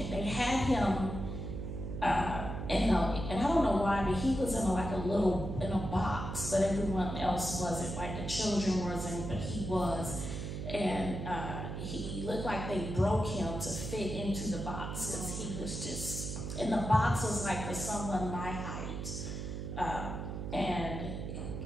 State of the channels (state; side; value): noise; right; hum, 5 dB below the sound